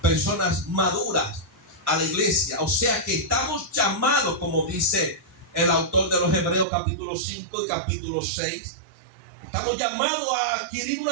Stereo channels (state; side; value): drops out; left; at 6.7 s